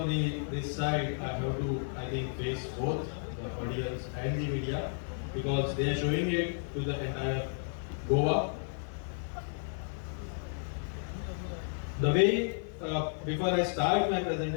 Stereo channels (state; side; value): silent; right; 56 dB below the other